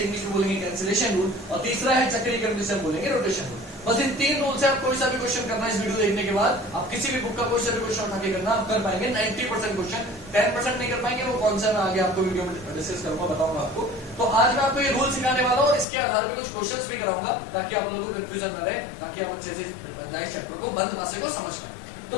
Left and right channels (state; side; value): drops out; right; at 15.9 s